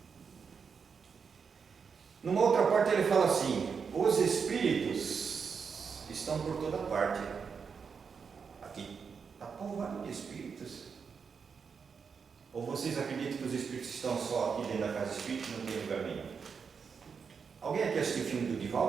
Numa outra parte ele fala assim: os espíritos estão por toda parte. Aqui está povoado de espíritos. Ou vocês acreditam que os espíritos estão só aqui dentro da casa espírita e não tem lugar nenhum? Alguém aqui assistiu o filme do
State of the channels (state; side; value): quieter; left; 6.0 dB